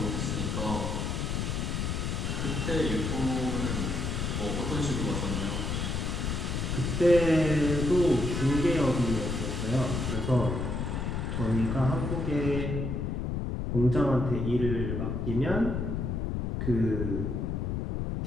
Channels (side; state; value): left; noise; rumble, 1 dB below the sound